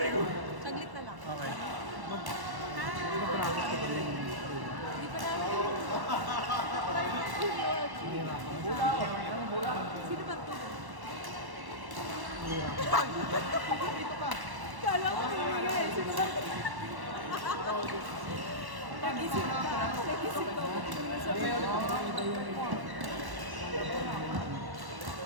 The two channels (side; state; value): left; late; 1.1 ms